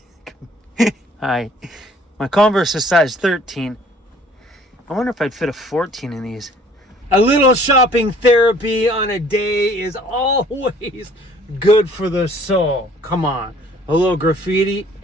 my Converse is size 13. I wonder if I'd fit a 14 in these. A little shopping therapy on a day is always good for the soul. Come on. A little graffiti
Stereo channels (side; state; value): both; normal; correlation 0.56